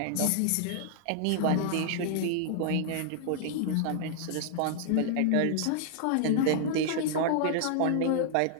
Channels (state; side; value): different; both; correlation -0.01